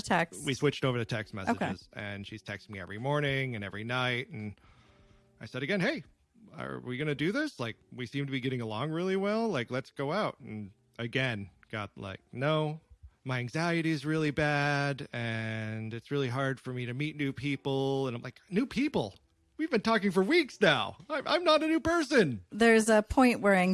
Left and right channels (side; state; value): both; identical; correlation 1.00